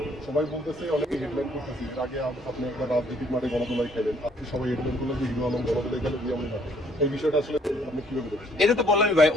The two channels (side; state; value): both; normal; correlation 0.64